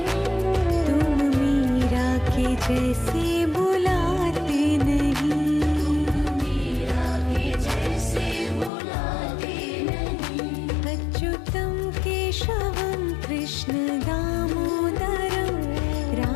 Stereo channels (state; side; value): drops out; right; at 8.7 s